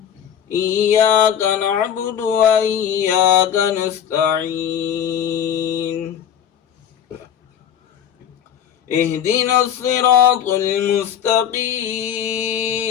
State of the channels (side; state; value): right; quieter; 9.2 dB